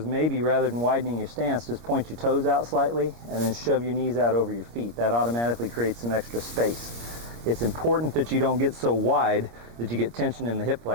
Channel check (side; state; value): left; late; 26 ms